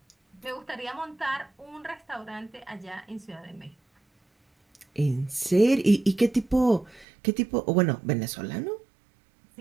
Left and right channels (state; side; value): drops out; left; at 7.1 s